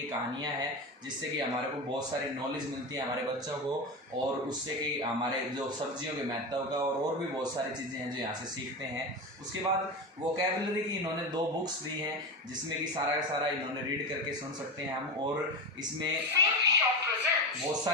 कहानियाँ हैं जिससे कि हमारे को बहुत सारी नॉलेज मिलती है हमारे बच्चों को, और उससे कि हमारे जो सब्जियों के महत्व का और भी बहुत सारी चीज़ें हैं जो यहाँ से सीखते हैं। उसके बाद वोकैबुलरी की इन्होंने 2 बुक्स दी हैं जिसमें कि सारा का सारा इन्होंने रीड करके सुन सकते हैं हम, और इसमें बहुत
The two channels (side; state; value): both; normal; correlation 0.21